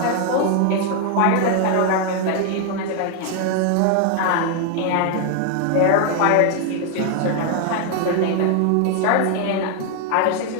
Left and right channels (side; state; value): both; different; correlation 0.00